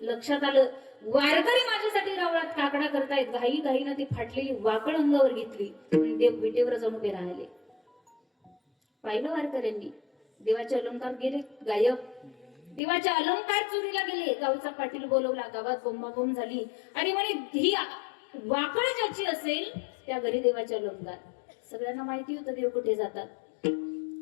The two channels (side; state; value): right; drops out; at 12.8 s